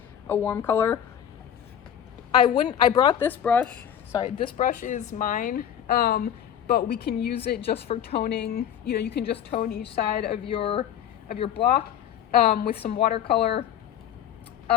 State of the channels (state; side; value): quieter; right; 9.7 dB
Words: a warm color. I brought this brush, sorry, this brush is mine, but we can use it just for toning. You know, you can just tone each side of your block with some watercolor.